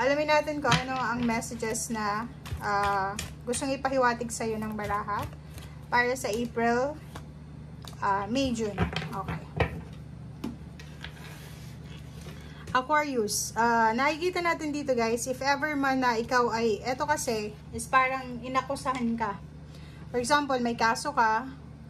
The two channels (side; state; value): both; identical; correlation 1.00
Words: natin kung ano ang messages na gustong ipahiwatig sa iyo ng baraha para sa April, May, June. Okay. Aquarius, nakikita natin dito guys, if ever man na ikaw ay, eto kasi, is parang inakusahan ka. For example, may kaso ka,